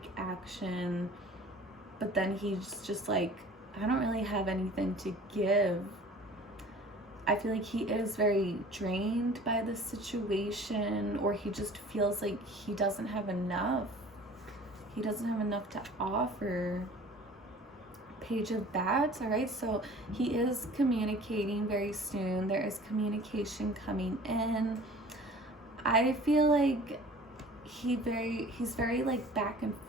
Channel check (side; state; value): both; normal; correlation 0.46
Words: action, but then he's just like, I don't really have anything to give. I feel like he is very drained by the situation, or he just feels like he doesn't have enough. He doesn't have enough to offer. Page of Bats. All right, so he is communicating very soon. There is communication coming in. I feel like he's very like back and